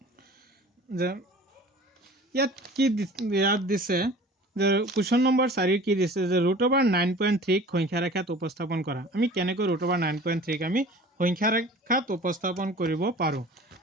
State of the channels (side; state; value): both; normal; correlation 0.44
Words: যে ইয়াত দিছে যে কুৱেশ্যন নম্বৰ 4 কি দিছে যে √9.3 সংখ্যা ৰেখাত উপস্থাপন কৰা। আমি কেনেকৈ √9.3 আমি সংখ্যা ৰেখাত উপস্থাপন কৰিব পাৰো।